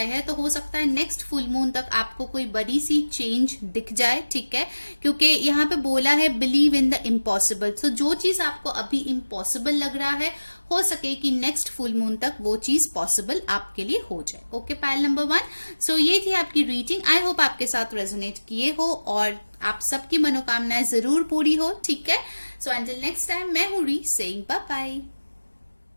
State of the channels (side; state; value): both; inverted; correlation -1.00